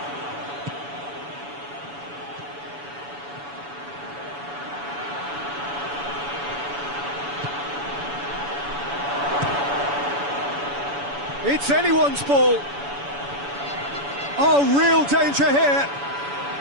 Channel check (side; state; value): left; late; 7.0 ms